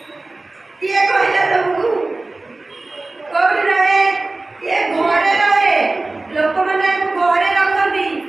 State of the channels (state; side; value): quieter; left; 3.1 dB